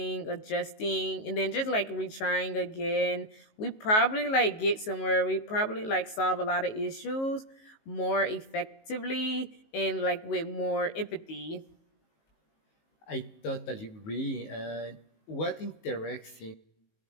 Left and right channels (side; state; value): right; late; 19 ms